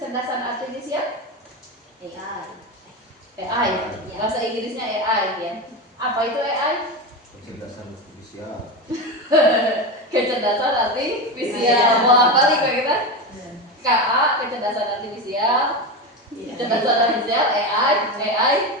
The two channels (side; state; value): both; normal; correlation 0.19